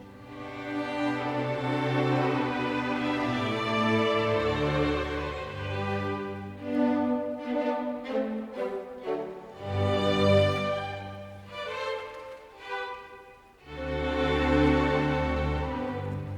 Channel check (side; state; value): both; identical; correlation 1.00